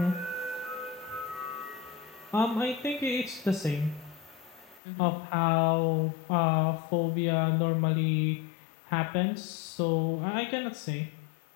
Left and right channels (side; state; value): right; drops out; at 4.8 s